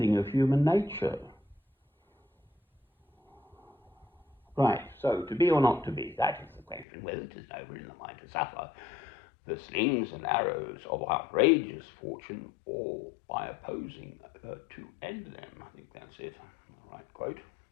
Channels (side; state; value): right; drops out; at 6.9 s